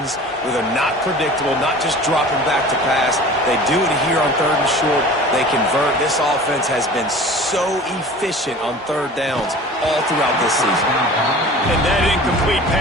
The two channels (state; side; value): normal; both; correlation 0.41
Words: where they're not predictable, not just dropping back to pass. They do it here on 3rd and short. They convert. This offense has been so efficient on 3rd downs all throughout this season. And that incomplete